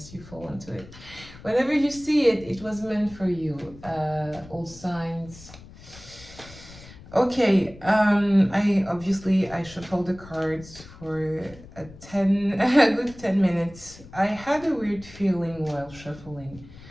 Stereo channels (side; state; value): left; noise; rumble, 19 dB below the sound